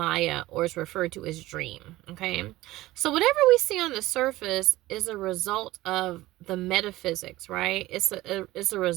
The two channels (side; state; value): left; quieter; 17.4 dB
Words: or it's referred to as dream. Okay? So whatever we see on the surface is a result of the metaphysics, right? It's a